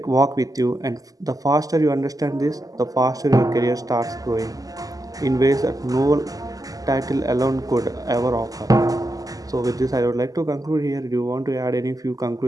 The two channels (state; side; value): late; left; 0.17 ms